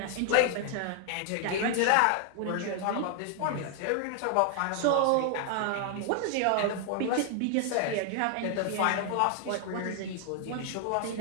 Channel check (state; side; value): different; both; correlation 0.00